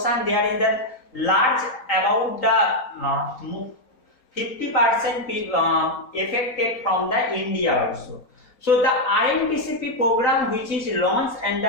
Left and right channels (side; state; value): right; late; 4.1 ms